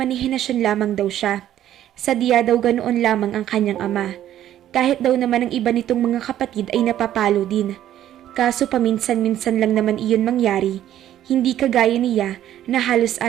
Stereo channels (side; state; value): left; quieter; 11.9 dB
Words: lamang daw siya. Sadya daw ganoon lamang ang kanyang ama. Kahit daw naman ang iba nitong mga kapatid ay napapalo din. Kaso paminsan-minsan lang naman iyon mangyari, hindi kagaya niya na halos